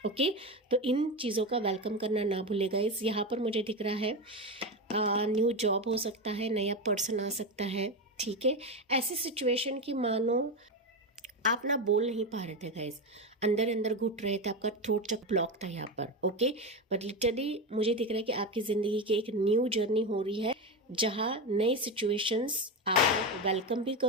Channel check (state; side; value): normal; both; correlation 0.16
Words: ओके, तो इन चीज़ों का वेलकम करना ना भूलेगा। इस यहाँ पर मुझे दिख रहा है न्यू जॉब हो सकता है, नया पर्सन आ सकता है, ठीक है। ऐसी सिचुएशन की मानो आप ना बोल नहीं पा रहे थे गाइस, अंदर अंदर घुट रहे थे, आपका थ्रोट चक ब्लॉक था यहाँ पर। ओके, बट लिटरली मुझे दिख रहा है कि आपकी ज़िंदगी की एक न्यू जर्नी हो रही है, जहाँ नई सिचुएशंस आप वेलकम भी